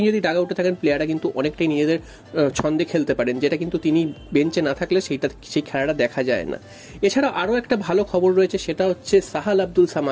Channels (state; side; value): identical; both; correlation 1.00